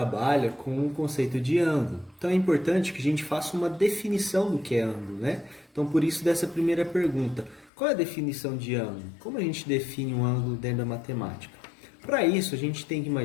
com o conceito de ângulo. Então, é importante que a gente faça uma definição do que é ângulo, né? Então, por isso dessa primeira pergunta. Qual é a definição de ângulo? Como a gente define um ângulo dentro da matemática? Para isso, a gente tem que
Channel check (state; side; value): drops out; right; at 7.7 s